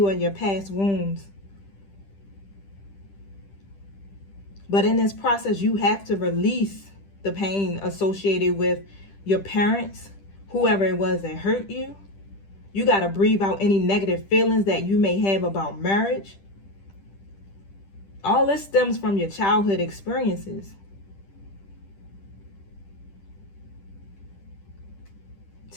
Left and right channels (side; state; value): right; late; 10 ms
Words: of your past wounds. But in this process, you have to release the pain associated with your parents, whoever it was that hurt you. You got to breathe out any negative feelings that you may have about marriage. All this stems from your childhood experiences.